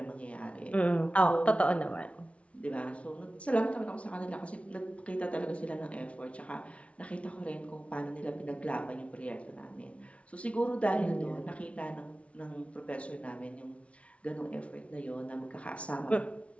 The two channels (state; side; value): late; right; 0.063 ms